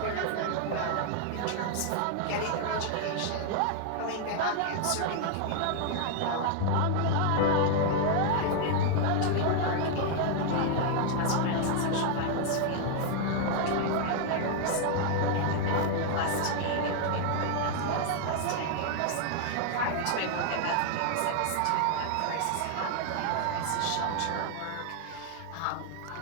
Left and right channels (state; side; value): different; both; correlation 0.00